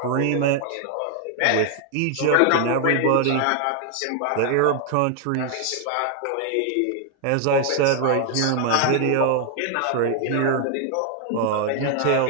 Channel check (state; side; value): different; both; correlation 0.00